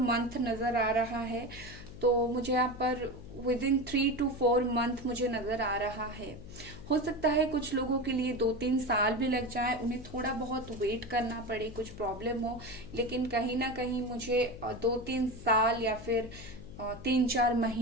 मंथ नजर आ रहा है, तो मुझे यहाँ पर विद इन 3 to 4 मंथ मुझे नजर आ रहा है। हो सकता है कुछ लोगों के लिए 2-3 साल भी लग जाए, उन्हें थोड़ा बहुत वेट करना पड़े, कुछ प्रॉब्लम हो, लेकिन कहीं ना कहीं मुझे 2-3 साल या फिर 3-4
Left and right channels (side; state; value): left; noise; hum, 14 dB below the sound